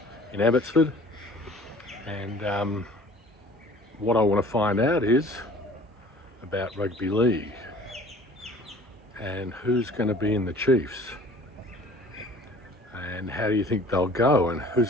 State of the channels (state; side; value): normal; both; correlation 0.48